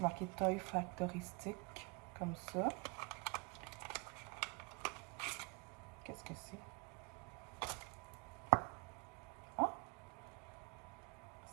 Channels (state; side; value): quieter; left; 30.4 dB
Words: Toy Factory Stick, comme ça. Qu'est-ce que c'est? Ah!